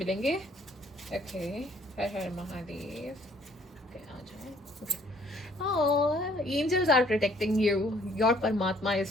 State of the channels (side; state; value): both; normal; correlation 0.61